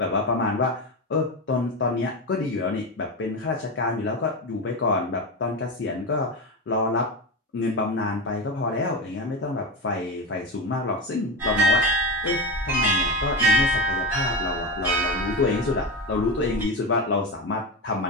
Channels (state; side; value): normal; both; correlation 0.19